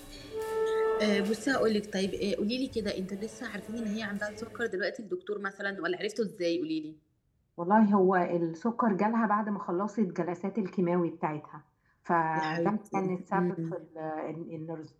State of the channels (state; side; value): identical; both; correlation 1.00